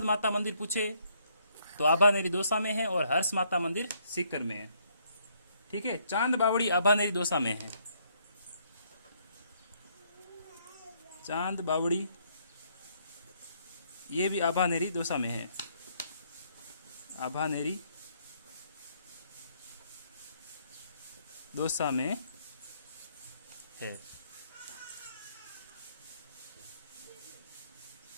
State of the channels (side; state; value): both; inverted; correlation -0.69